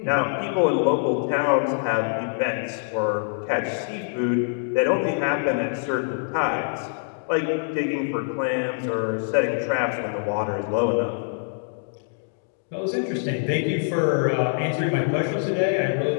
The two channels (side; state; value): right; silent; digital silence